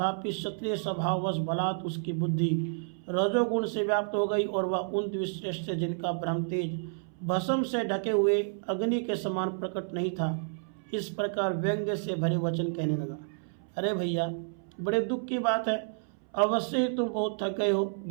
क्षत्रिय स्वभाववश बलात् उसकी बुद्धि रजोगुण से व्याप्त हो गई और वह उन द्विश्रेष्ठ जिनका ब्रह्म तेज भस्म से ढके हुए अग्नि के समान प्रकट नहीं था, इस प्रकार व्यंग्य से भरे वचन कहने लगा, अरे भैया, बड़े दुख की बात है, अवश्य ही तुम बहुत थक गए हो।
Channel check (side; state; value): left; silent; 58 dB below the other